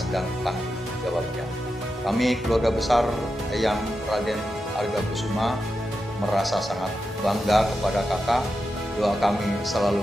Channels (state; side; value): normal; both; correlation 0.89